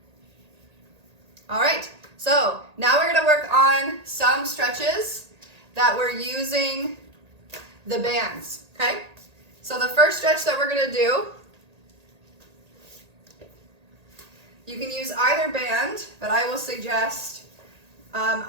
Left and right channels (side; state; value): left; late; 1.8 ms